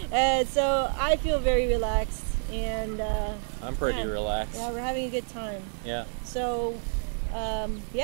So I feel very relaxed, and I'm pretty relaxed. Yeah, we're having a good time. Yeah. So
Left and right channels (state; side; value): silent; left; 59 dB below the other